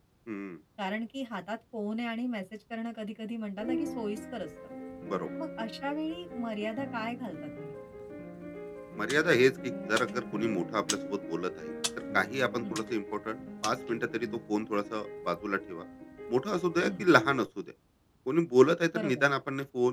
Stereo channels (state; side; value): identical; both; correlation 1.00